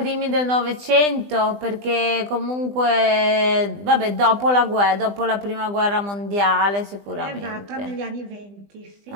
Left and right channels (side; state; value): left; late; 20 ms